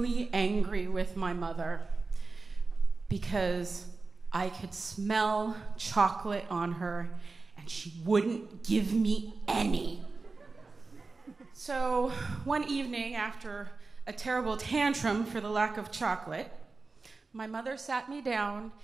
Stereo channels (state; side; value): quieter; left; 3.9 dB